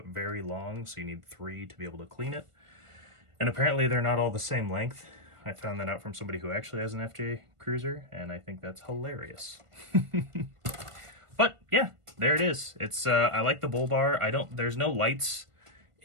very long, so you need 3 to be able to clean it. And apparently they're not all the same length. I found that out from somebody who actually has an FJ Cruiser, and I think that's hilarious. But yeah, there it is. It's I like the bull bar. There's no lights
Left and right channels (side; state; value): left; late; 1.5 ms